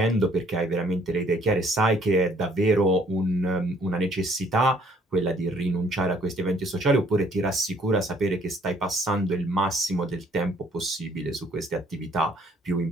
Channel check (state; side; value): normal; both; correlation 0.62